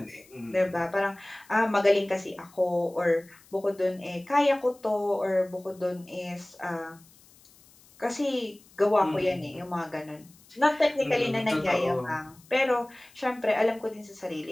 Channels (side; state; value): left; noise; hiss, 27 dB below the sound